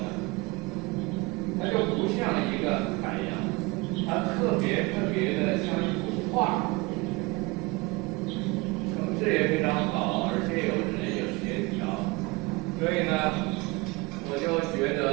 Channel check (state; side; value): quieter; left; 24.8 dB